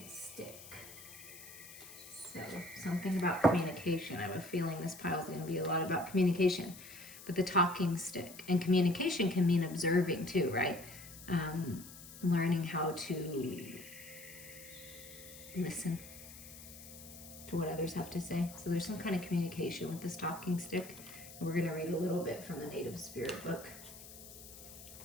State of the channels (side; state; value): left; noise; hiss, 16 dB below the sound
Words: stick. So something about communication. I have a feeling this pile is gonna be a lot about communication. But the talking stick, and communication can mean observing too, right? Learning how to listen to what others have to say. So there's some kind of communication with this talking stick. And we're gonna read a little bit from the Native Spirit book.